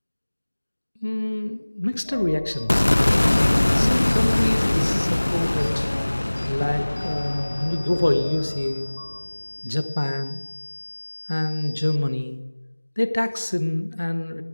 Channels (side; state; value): both; inverted; correlation -1.00